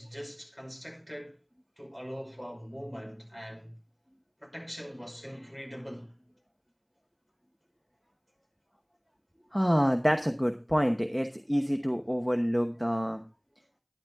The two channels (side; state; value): both; identical; correlation 1.00